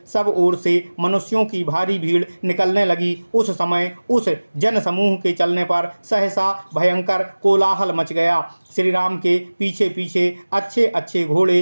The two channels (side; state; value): both; inverted; correlation -1.00